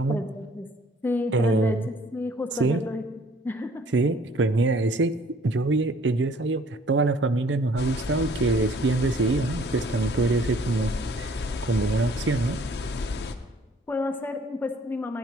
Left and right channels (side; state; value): both; normal; correlation 0.57